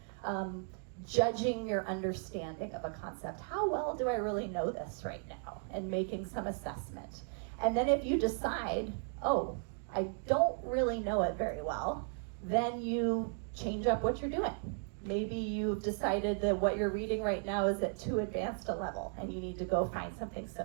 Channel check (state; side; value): silent; left; 54 dB below the other